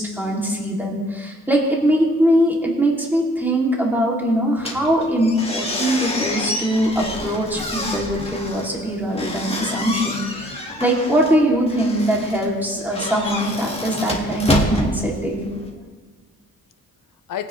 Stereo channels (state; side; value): normal; both; correlation 0.59